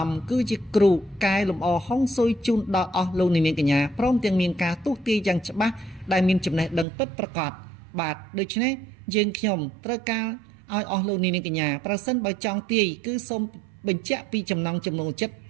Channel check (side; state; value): left; drops out; at 6.9 s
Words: មគឺជាគ្រូកែលម្អហុងស៊ុយជូនដល់អស់លោកនាងកញ្ញាព្រមទាំងមានការទុះទាយយ៉ាងច្បាស់ដែលមានចំណេះដឹងពិតប្រាកដបាទដូច្នេះយើងខ្ញុំត្រូវការឲ្យអស់លោកនាងកញ្ញាប្រសិនបើចង់ទាយគឺសូមបញ្ជាក់ពីចំណង់ចំណូលចិត្ត